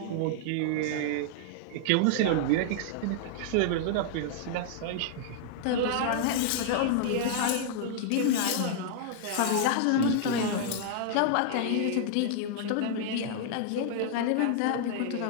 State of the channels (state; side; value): different; both; correlation -0.01